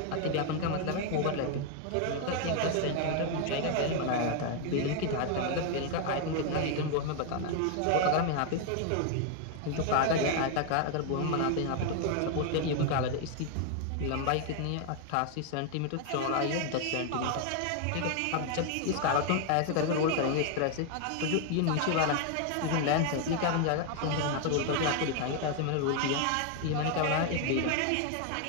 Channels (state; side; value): different; both; correlation 0.00